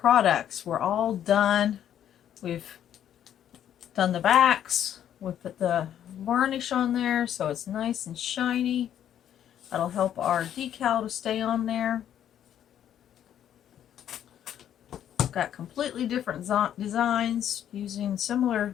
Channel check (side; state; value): right; quieter; 10.3 dB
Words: We're all done. We've done the backs. We put the varnish on there so it's nice and shiny. That'll help our decal to stay on there. Got completely different designs using